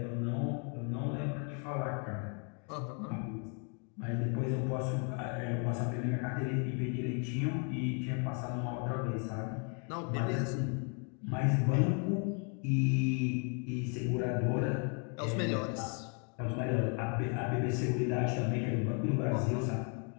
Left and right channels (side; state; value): right; quieter; 39.1 dB